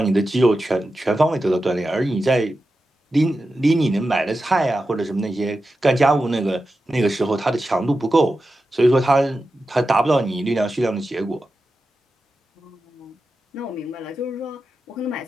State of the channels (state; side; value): normal; both; correlation 0.91